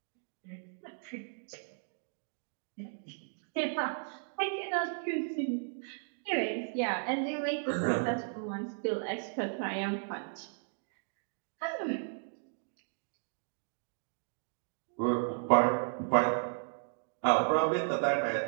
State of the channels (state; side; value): silent; left; digital silence